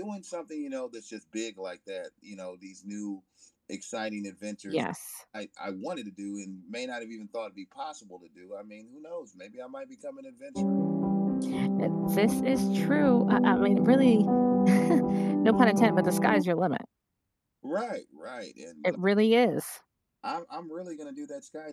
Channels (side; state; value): both; identical; correlation 1.00